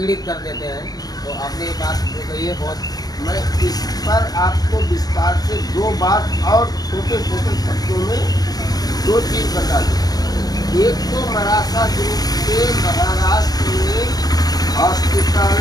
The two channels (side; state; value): right; late; 0.19 ms